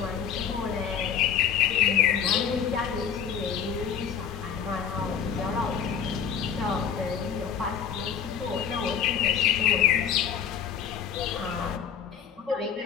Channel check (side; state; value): right; quieter; 7.9 dB